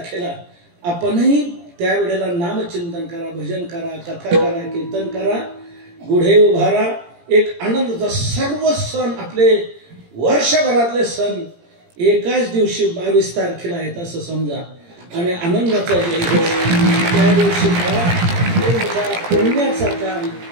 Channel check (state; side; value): late; left; 17 ms